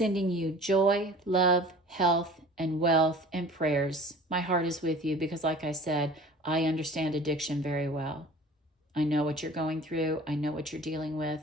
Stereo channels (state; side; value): normal; both; correlation 0.44